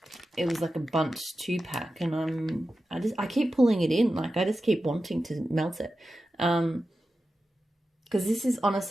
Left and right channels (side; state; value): both; normal; correlation 0.92